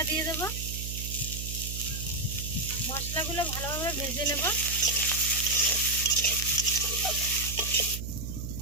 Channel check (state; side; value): noise; right; hum, 6 dB below the sound